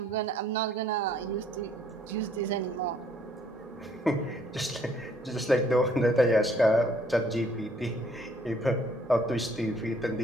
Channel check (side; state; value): both; normal; correlation 0.62